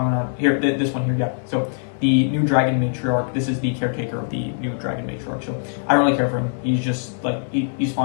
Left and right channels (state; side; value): silent; right; digital silence